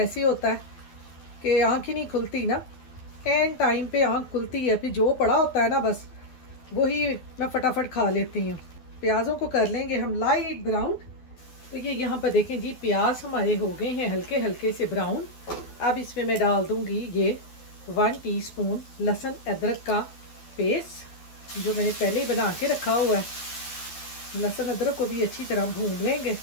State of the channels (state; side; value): late; right; 12 ms